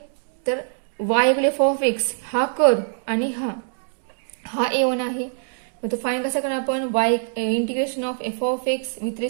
तर y equal f of x हा कर्व आणि हा A1 आहे. मग तो फाईन कसा करणार आपण, Y integration of F of x with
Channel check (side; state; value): left; silent; digital silence